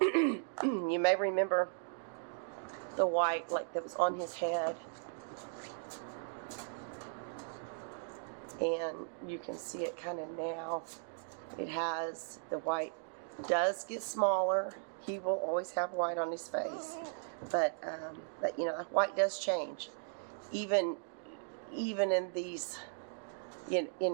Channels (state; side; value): silent; left; digital silence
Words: may remember the white that was on his head. And you can see it kind of now. It has, the white does get smaller. He will always have white on his face. But, that white does change. Even in these,